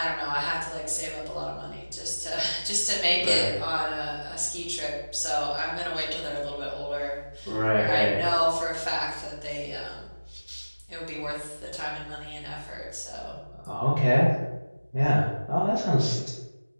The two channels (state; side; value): inverted; both; correlation -1.00